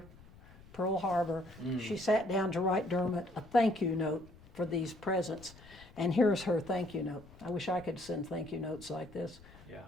Pearl Harbor, she sat down to write Dermot a thank you note for these presents. And here's her thank you note. I wish I could send thank you notes like this. Yeah.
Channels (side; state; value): left; noise; rumble, 22 dB below the sound